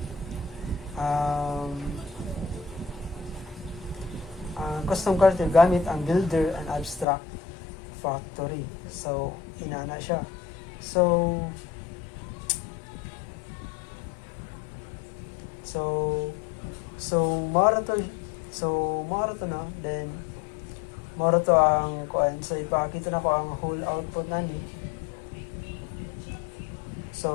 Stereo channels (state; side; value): drops out; right; at 7.1 s